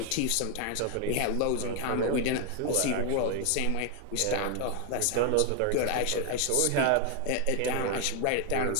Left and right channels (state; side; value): different; both; correlation 0.00